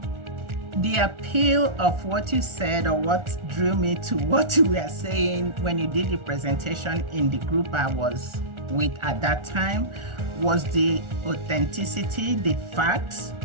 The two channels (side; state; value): left; late; 1.4 ms